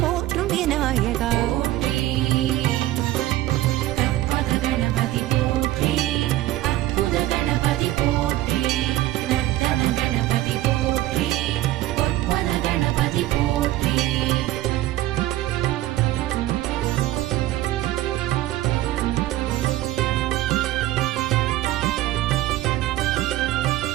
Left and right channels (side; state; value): left; quieter; 15.6 dB